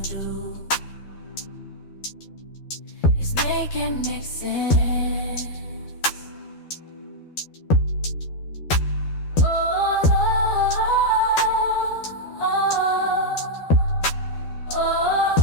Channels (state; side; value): late; right; 12 ms